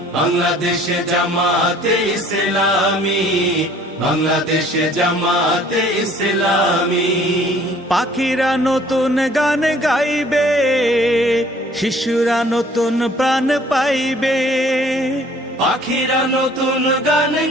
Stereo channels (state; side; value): normal; both; correlation 0.55